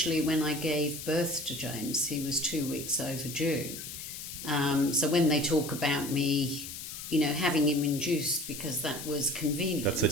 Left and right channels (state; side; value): noise; left; hiss, 9 dB below the sound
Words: when I gave birth to James, he was 2 weeks overdue. So when they talk about me, having him induced because that was convenient. That's